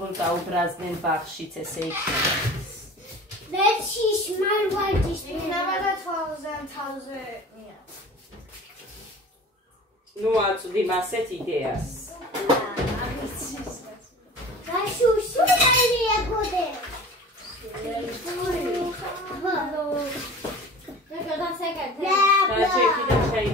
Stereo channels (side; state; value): both; normal; correlation 0.40